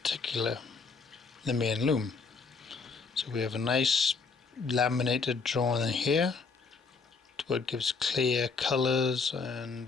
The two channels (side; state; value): right; quieter; 4.7 dB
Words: the main loom. So we have a nice laminated drawing here where it gives clear colours and